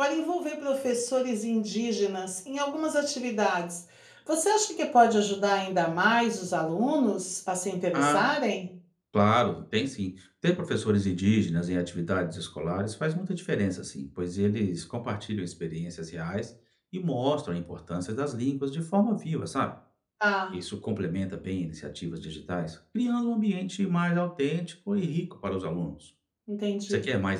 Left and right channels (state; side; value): identical; both; correlation 1.00